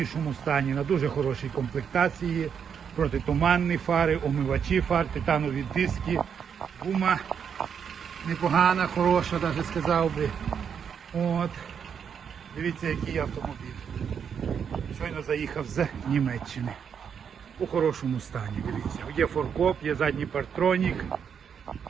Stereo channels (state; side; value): quieter; left; 7.4 dB